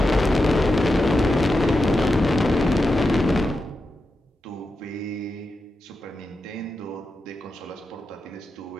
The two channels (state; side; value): normal; both; correlation 0.89